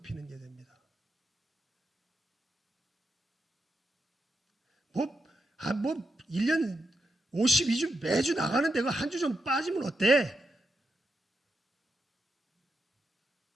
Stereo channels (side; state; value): both; normal; correlation 0.84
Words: 게 됩니다. 1년 52주 매주 나가는데 그 한 주 좀 빠지면 어때?